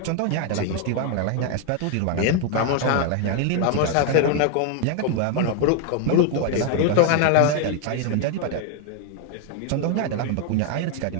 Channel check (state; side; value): different; both; correlation 0.00